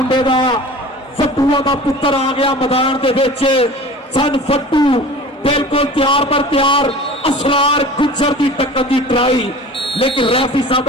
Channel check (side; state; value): both; normal; correlation 0.40